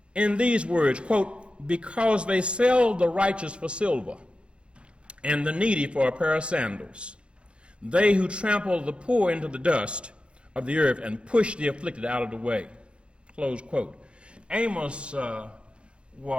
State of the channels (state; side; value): late; left; 0.057 ms